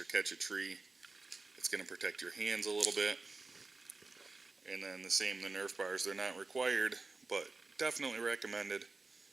catch a tree, it's going to protect your hands a little bit. And then the same, the Nerf bars, they're not required, but definitely recommended.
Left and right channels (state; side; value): quieter; left; 3.7 dB